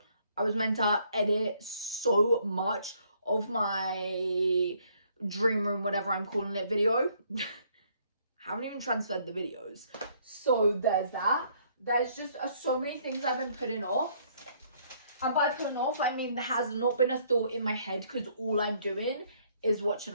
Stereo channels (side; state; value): both; inverted; correlation -0.65